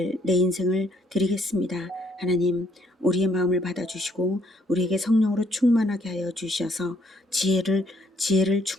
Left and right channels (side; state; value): both; normal; correlation 0.68